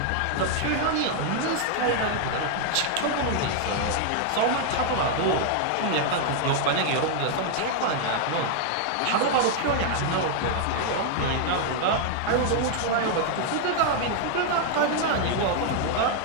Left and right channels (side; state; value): both; different; correlation 0.00